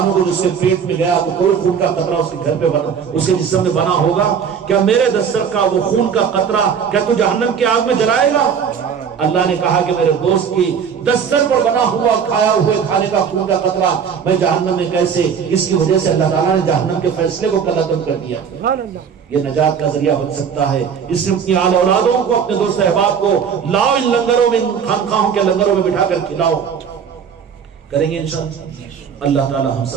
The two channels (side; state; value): left; quieter; 7.1 dB